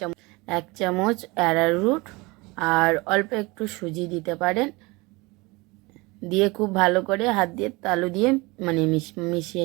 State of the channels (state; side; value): quieter; left; 24.3 dB